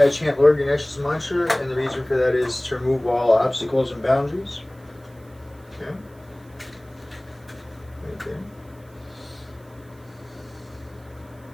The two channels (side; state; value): right; noise; hiss, 30 dB below the sound